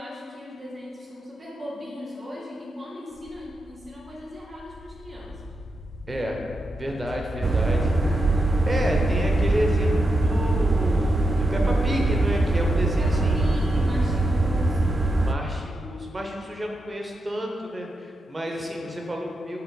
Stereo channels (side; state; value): both; normal; correlation 0.85